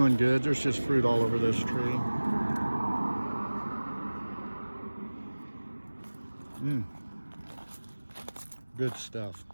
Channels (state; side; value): inverted; both; correlation -1.00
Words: good. There's just fruit all over this tree. Good stuff.